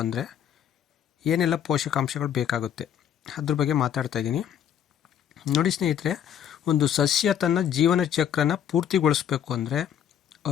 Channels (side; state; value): right; quieter; 9.3 dB